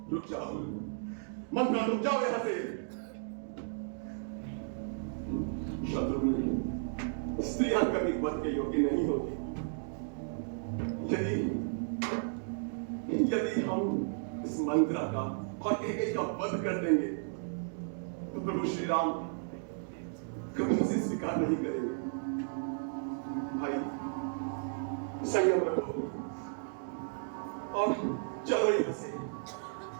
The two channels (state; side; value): silent; left; digital silence